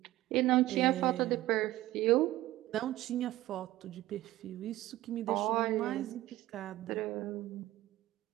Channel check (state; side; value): quieter; left; 16.1 dB